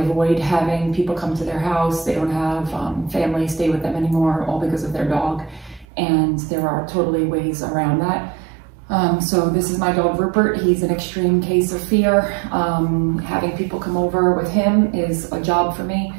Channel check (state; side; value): drops out; left; at 5.9 s